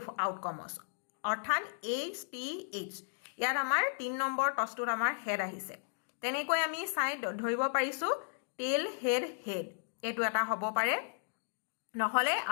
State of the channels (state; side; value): silent; right; digital silence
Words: আউটকামছ অৰ্থাৎ HTH ইয়াত আমাৰ 3 নম্বৰ টছটোত আমাৰ হেড আহিছে তেনেকৈ আমি চাই ধৰিব পাৰিছো টেল হেড হেড এইটো এটা হ'ব পাৰে নহলে